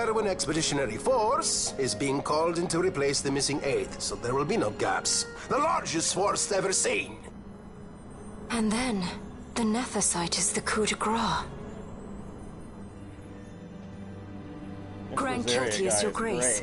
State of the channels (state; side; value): identical; both; correlation 1.00